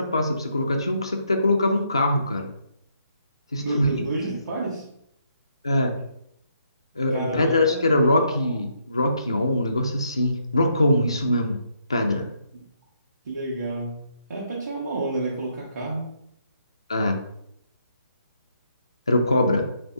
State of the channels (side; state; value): both; inverted; correlation -0.74